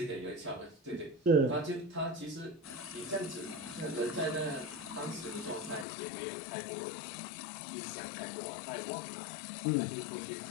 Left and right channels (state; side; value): drops out; right; at 5.9 s